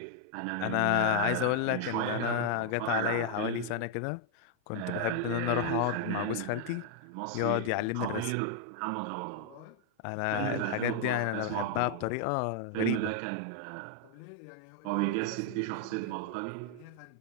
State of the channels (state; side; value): different; both; correlation 0.00